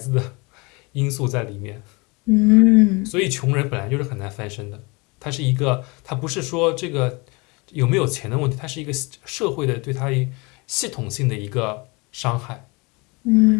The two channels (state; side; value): quieter; right; 27.4 dB